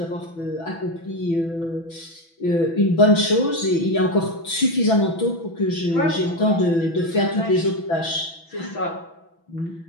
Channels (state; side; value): late; right; 6.0 ms